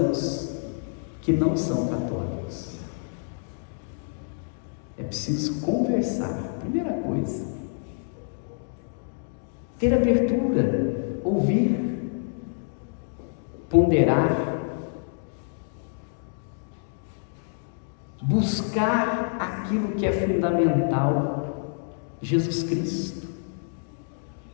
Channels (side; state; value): right; silent; digital silence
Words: que não são católicos. É preciso conversar, primeira coisa. Ter abertura, ouvir, ponderar, buscar aquilo que é fundamental. Jesus Cristo.